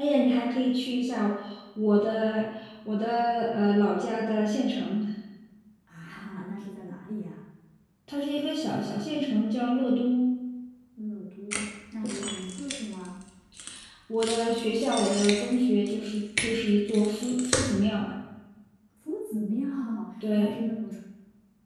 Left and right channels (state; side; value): identical; both; correlation 1.00